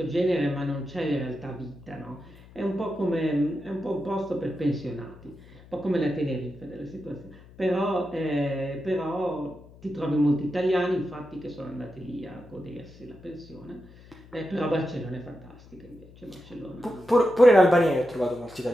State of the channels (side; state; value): left; noise; hum, 22 dB below the sound